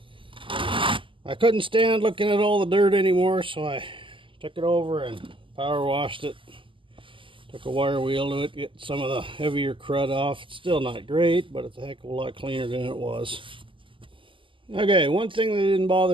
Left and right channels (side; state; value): left; late; 0.25 ms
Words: I couldn't stand looking at all the dirt anymore, so I took it over and power washed it. Took a wire wheel to it, get some of the heavier crud off. It's still not great, but it's a heck of a lot cleaner than it was. Okay, one thing they didn't